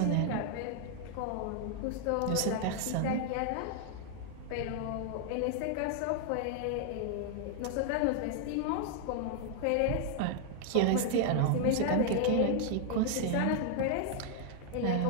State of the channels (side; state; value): both; different; correlation 0.00